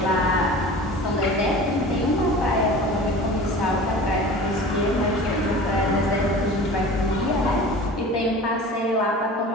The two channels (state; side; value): normal; both; correlation 0.39